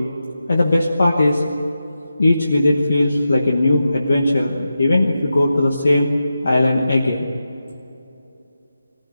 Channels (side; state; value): both; inverted; correlation -0.90